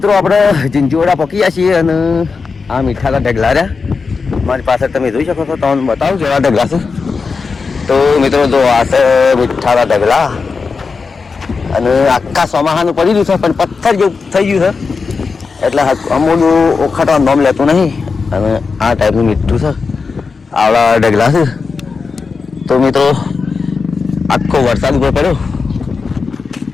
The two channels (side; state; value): right; quieter; 4.8 dB